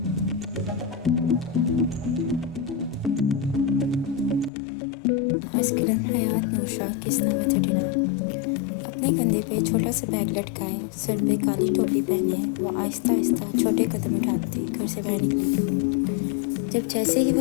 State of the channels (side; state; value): right; drops out; at 4.5 s